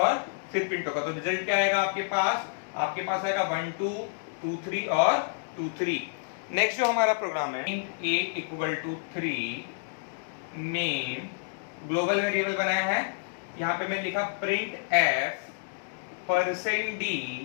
फिर प्रिंट होगा। तो रिजल्ट क्या आएगा आपके पास आएगा 1 2 2 3 और 2 3। नेक्स्ट जो हमारा प्रोग्राम है int a = 3, main global variable बनाया है। यहाँ पे मैंने लिखा printf %d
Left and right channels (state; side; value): silent; right; digital silence